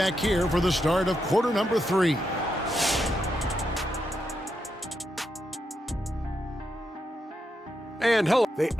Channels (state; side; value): normal; both; correlation 0.83